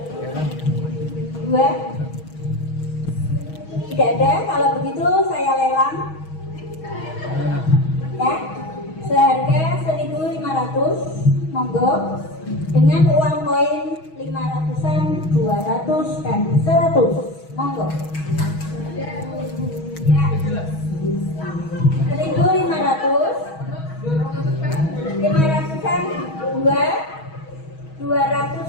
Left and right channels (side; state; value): right; late; 6.3 ms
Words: 2. Tidak ada, kalau begitu saya lelang. Ya, seharga 1.500, monggo. Dengan uang koin 500-an, 200 dan 100, monggo. Ya, 1.500, 500-an 2,